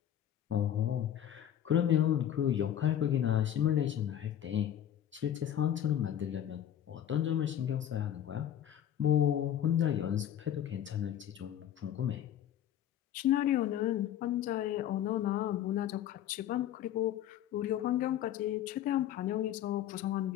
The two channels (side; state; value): right; quieter; 10.7 dB